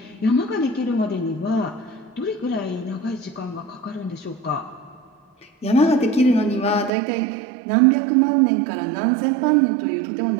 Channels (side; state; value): left; drops out; at 6.9 s